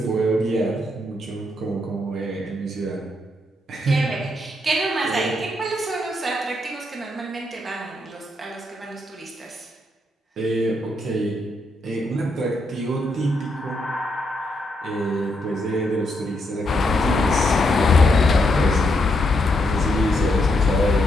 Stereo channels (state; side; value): normal; both; correlation 0.78